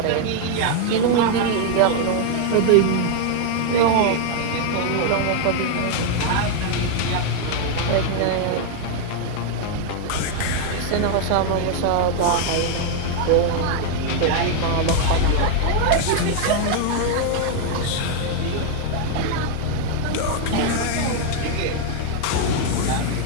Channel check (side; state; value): both; different; correlation 0.00